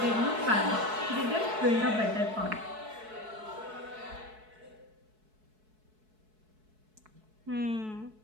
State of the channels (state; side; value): late; left; 4.6 ms